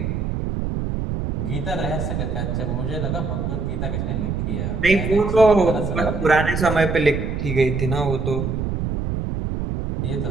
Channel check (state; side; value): noise; right; rumble, 2 dB below the sound